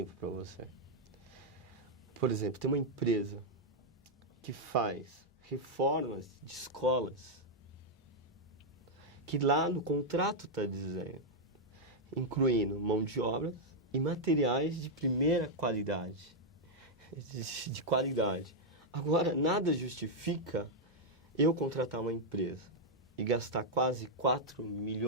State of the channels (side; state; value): both; normal; correlation -0.03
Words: para você. Por exemplo, tem uma empresa que faz reformas de escolas que lá no contrato está dizendo, incluindo mão de obra e materiais de primeira qualidade. De qualidade. Agora, nada justifica eu contratar uma empresa e gastar quase 4